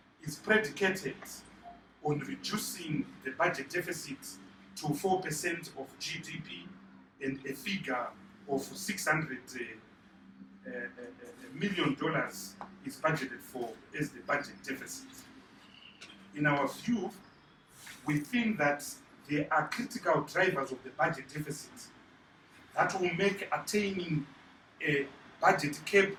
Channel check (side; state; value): both; identical; correlation 1.00